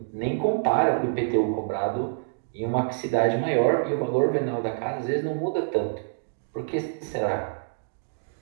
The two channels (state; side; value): silent; left; digital silence